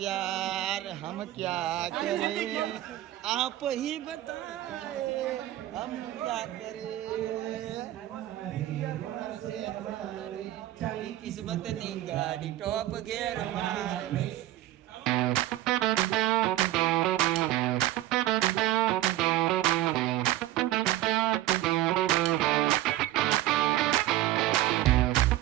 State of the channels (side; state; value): left; quieter; 14.8 dB